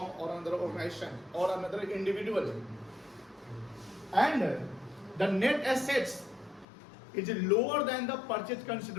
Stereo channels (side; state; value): right; drops out; at 6.7 s